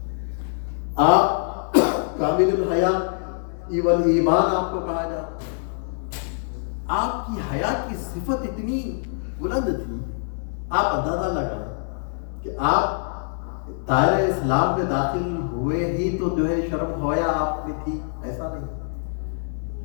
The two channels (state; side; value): silent; right; 62 dB below the other